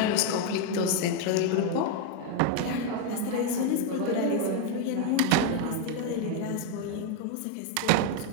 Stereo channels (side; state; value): both; different; correlation 0.01